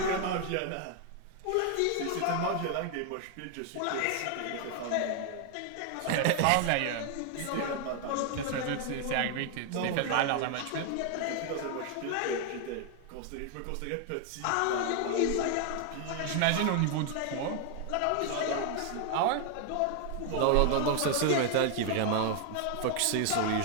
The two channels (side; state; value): both; different; correlation 0.00